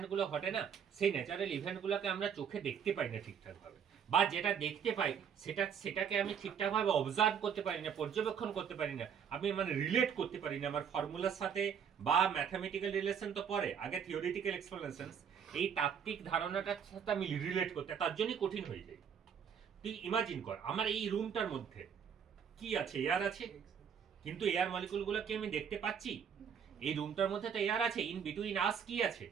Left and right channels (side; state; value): left; quieter; 7.5 dB